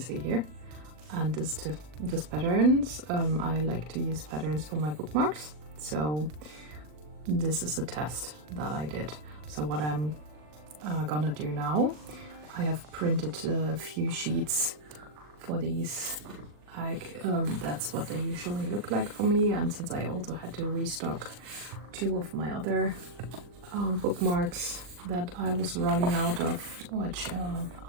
here, and this patterns. I like to use patterns for my bookmarks, so this is a test that I did. So what I'm gonna do now, I have printed a few sheets for these. Like that's what they usually look like for me, and since I also had to restock 2 of my other bookmarks that I was running out of, which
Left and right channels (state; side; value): late; left; 40 ms